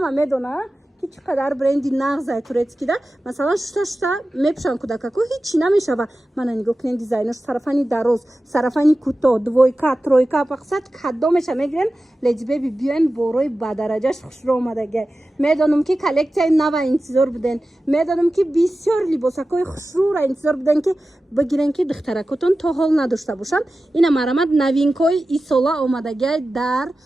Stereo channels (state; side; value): normal; both; correlation 0.94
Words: медона ки чӣ қадар бренди нағзай турецкида масалан шута мепӯшанд кӯдакаку ҳичи намешава мана нигоҳ кунед дизайнош сарафани дароз сарафани кӯтоҳ двойка тройка мақсад кадомеша мегирен леҷбеби биёен борои бадараҷаш хушро омадагӣ медонам ки коллексияи нава интизор буден медонам ки бисёр либосакҳои хушрӯра интизор буден ки бигирен ки духтаракотон то ҳол надошта бошанд ина марамад новинкаҳои исола омадагиай дар